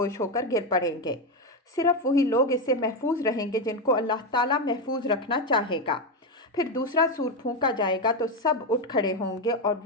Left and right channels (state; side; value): normal; both; correlation 0.10